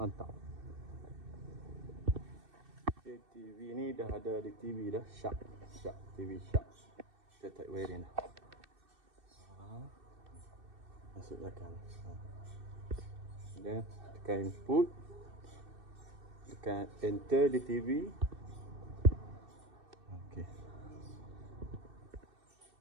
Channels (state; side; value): late; left; 2.6 ms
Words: Okay, TV ni dah ada di TV dah. Sharp TV Sharp. Kita tarik wiring dah. Masuk belakang. Dan tekan input, tekan enter di TV. Okey.